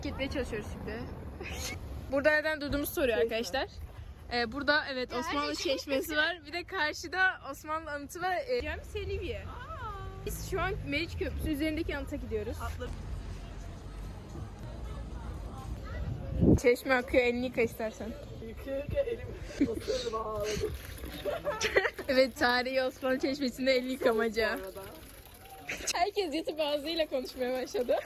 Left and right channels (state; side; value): identical; both; correlation 1.00